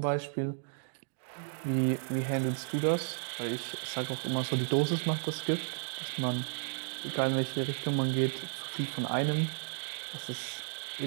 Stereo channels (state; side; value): silent; left; digital silence